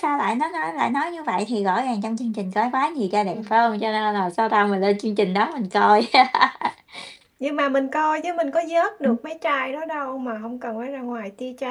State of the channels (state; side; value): identical; both; correlation 1.00